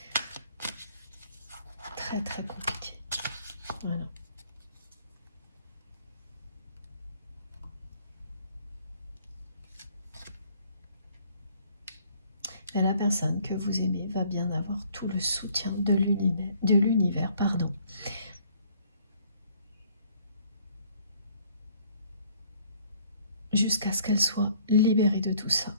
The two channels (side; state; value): both; inverted; correlation -0.60